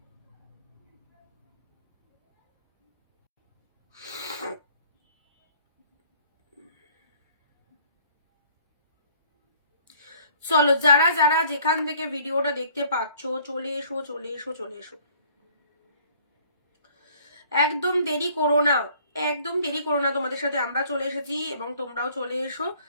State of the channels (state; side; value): inverted; both; correlation -0.57